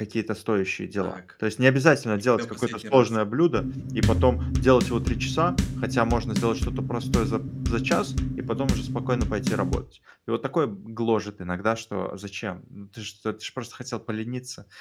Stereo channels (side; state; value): both; identical; correlation 1.00